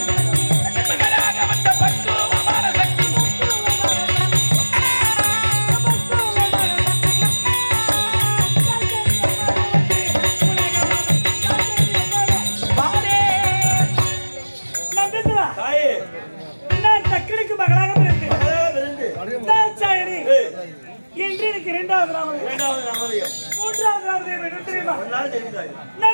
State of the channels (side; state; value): both; inverted; correlation -1.00